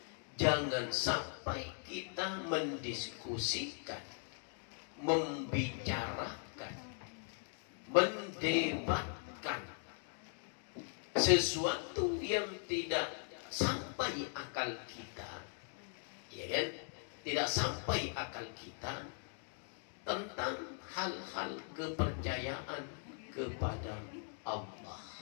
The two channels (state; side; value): silent; right; 51 dB below the other